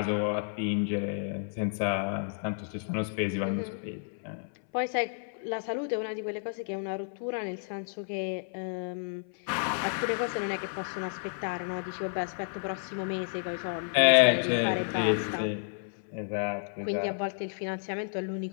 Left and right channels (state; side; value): silent; right; 57 dB below the other